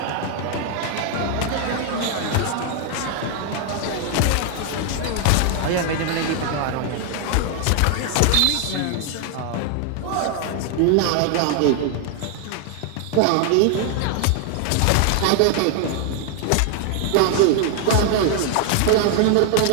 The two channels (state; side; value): different; both; correlation 0.00